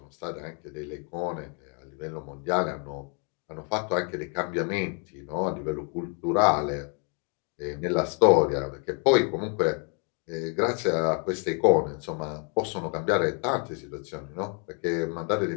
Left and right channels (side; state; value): right; quieter; 38.8 dB